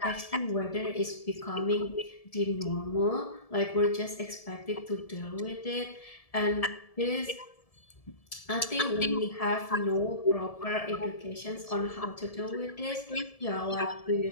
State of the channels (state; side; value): late; right; 1.7 ms